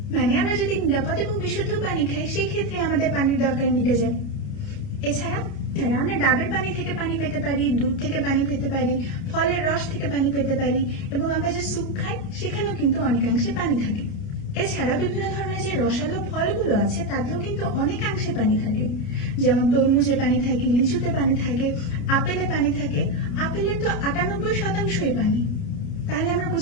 মানে আমরা যদি নিরাপদ এবং বিশুদ্ধ পানি খাই সেই ক্ষেত্রে আমাদের পানির দরকার মিটে যায়। এছাড়া আমরা ডাবের পানি থেকে পানি পেতে পারি, দুধ থেকে পানি পেতে পারি, ফলের রস থেকে পানি পেতে পারি, এবং আমরা যে স্যুপ খাই সেখানেও কিন্তু অনেকাংশে পানি থাকে। এছাড়া বিভিন্ন ধরনের যে রসালো ফলগুলো আছে তাতেও কিন্তু অনেকাংশে পানি থাকে। যেমন তরমুজে পানি থাকে, লিচুতে পানি থাকে, আপেলে পানি থাকে। আপেলের তো 98%ই পানি। তাহলে আমরা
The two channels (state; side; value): late; right; 29 ms